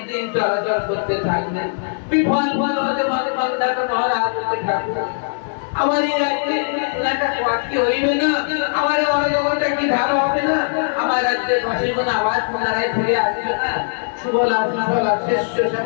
দিন চলাচল করতে থাকলেন। বিফল ফল হতে মান্ধাতা মহারাজ হতে ঠাকুর, আমার এই রাজ্যে একটা কি হইবে না, আমার অরাজকতা কি ভালো হবে না, আমার রাজ্যের বাসীগণ আবার পুনরায় ফিরে আসবে না, সুবলা সুফলা শ্রেষ্ঠ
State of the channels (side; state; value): right; silent; digital silence